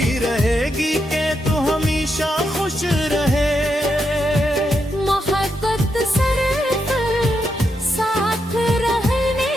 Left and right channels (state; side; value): normal; both; correlation 0.82